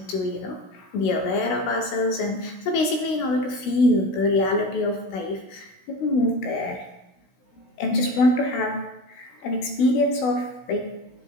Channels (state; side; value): late; right; 16 ms